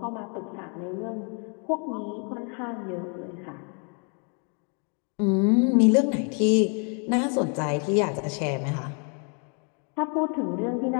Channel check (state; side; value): quieter; right; 38.5 dB